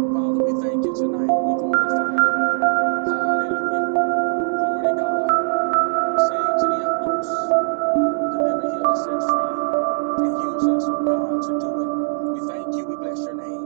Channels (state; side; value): silent; left; digital silence